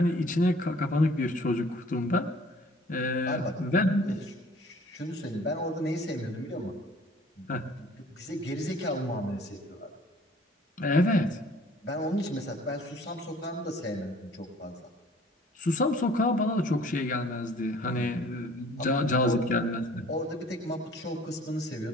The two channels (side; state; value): both; normal; correlation 0.53